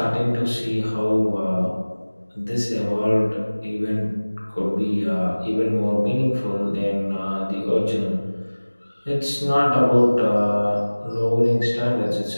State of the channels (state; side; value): inverted; both; correlation -1.00